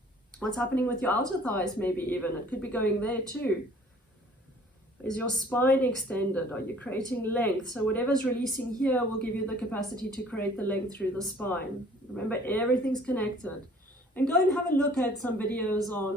What's happening with your outer thighs maybe even. It could be going there too. Is your spine extended? Are you creating length? So whatever's releasing here will give you the capacity to create the length through the spine. Remember, everything's connected. And go and have a look at some videos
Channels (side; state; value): both; normal; correlation 0.54